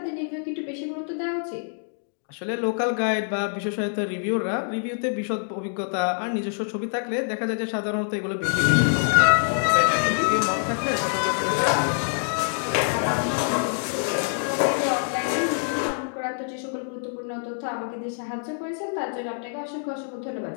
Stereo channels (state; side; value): silent; right; digital silence